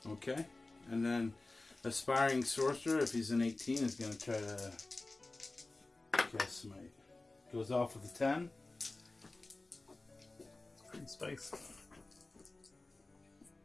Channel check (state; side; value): quieter; right; 3.1 dB